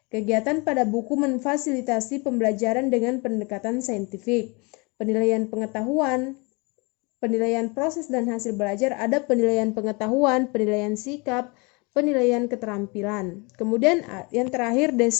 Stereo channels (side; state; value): right; quieter; 29.1 dB